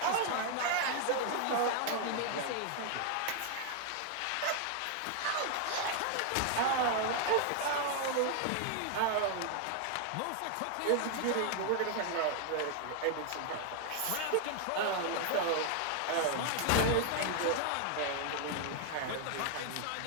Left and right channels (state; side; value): different; both; correlation 0.00